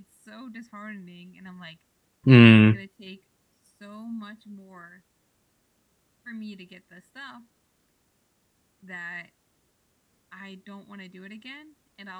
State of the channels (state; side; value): identical; both; correlation 1.00